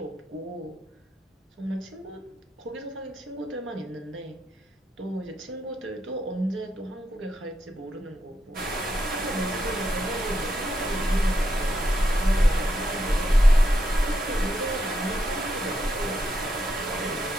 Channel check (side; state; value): both; normal; correlation 0.81